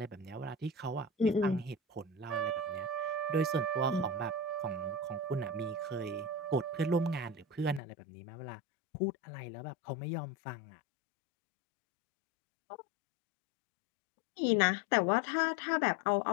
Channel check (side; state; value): right; drops out; at 7.8 s